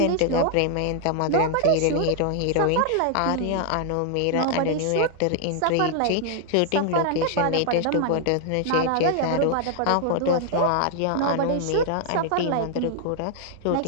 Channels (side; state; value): both; different; correlation 0.00